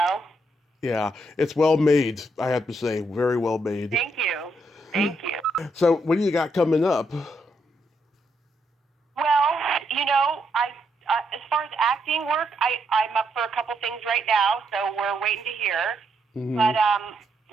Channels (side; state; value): both; normal; correlation 0.77